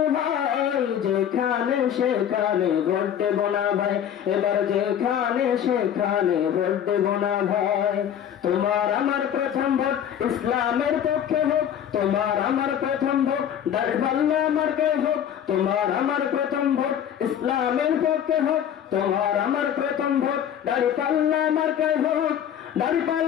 হয়। যেখানে সেখানে ভোট দেব না ভাই, এবার যেখানে সেখানে ভোট দেব না ভাই। তোমার আমার প্রথম ভোট ইসলামের পক্ষে হোক, তোমার আমার প্রথম ভোট দাঁড়িপাল্লা মার্কায় হোক। তোমার আমার প্রথম ভোট ইসলামের পক্ষে হোক, তোমার আমার প্রথম ভোট দাঁড়িপাল্লা মার্কায় হোক।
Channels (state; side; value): quieter; right; 9.5 dB